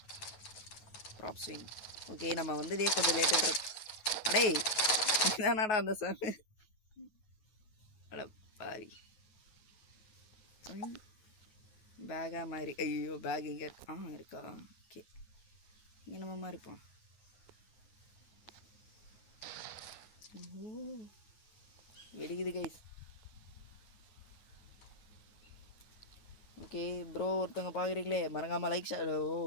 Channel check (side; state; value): right; late; 9.3 ms